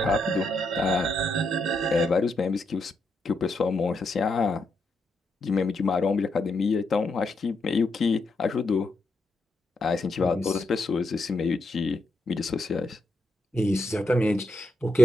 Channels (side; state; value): both; normal; correlation 0.82